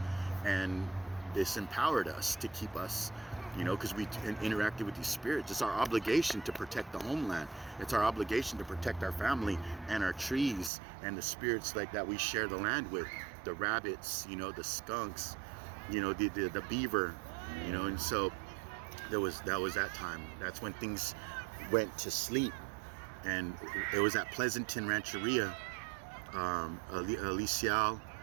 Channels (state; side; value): drops out; left; at 10.7 s